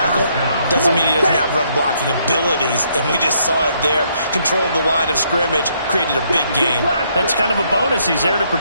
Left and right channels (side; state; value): both; inverted; correlation -0.71